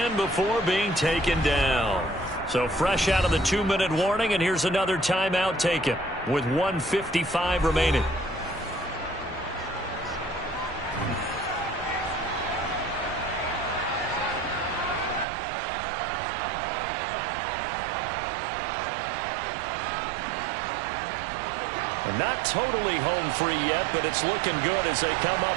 before being taken down. So fresh out of the 2-minute warning, and here's another timeout taken with 1:55 remaining. And not totally home free yet, but it's looking good as they come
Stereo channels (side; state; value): left; drops out; at 15.2 s